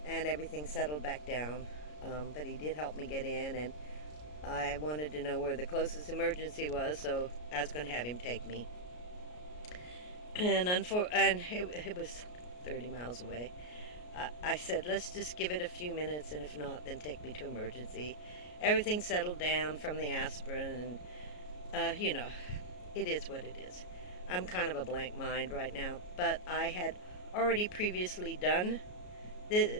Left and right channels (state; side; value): late; right; 33 ms